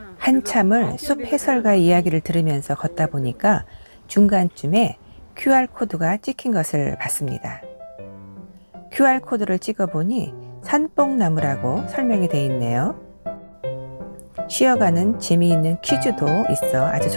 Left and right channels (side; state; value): both; inverted; correlation -1.00